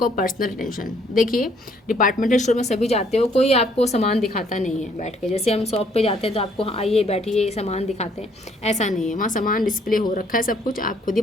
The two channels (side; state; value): both; normal; correlation 0.65